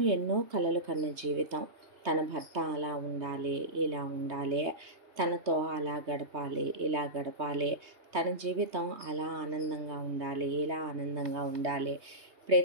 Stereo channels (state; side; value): late; left; 3.2 ms